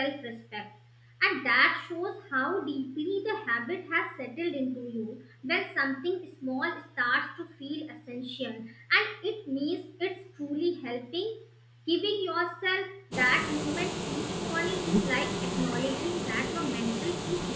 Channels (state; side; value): identical; both; correlation 1.00